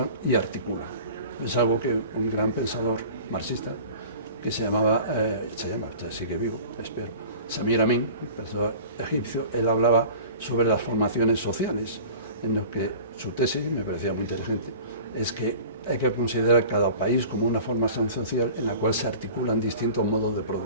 y articulan. Es algo que un gran pensador marxista que se llama, sigue vivo, espero, Samir Amin, pensador egipcio, él hablaba sobre las formaciones sociales, en lo que su tesis, me parecía muy inteligente, es que hay que considerar cada país como una formación social en la cual se articulan distintos modos de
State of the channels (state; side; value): inverted; both; correlation -0.41